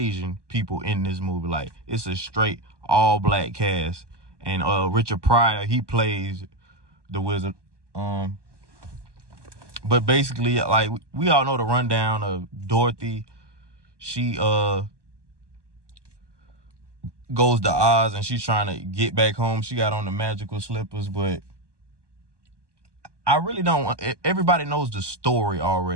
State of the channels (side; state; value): left; late; 1.2 ms